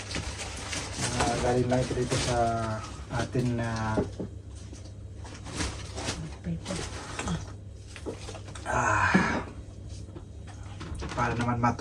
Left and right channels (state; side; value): identical; both; correlation 1.00